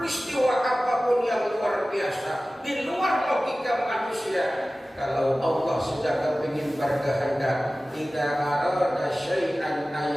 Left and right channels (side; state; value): both; normal; correlation 0.96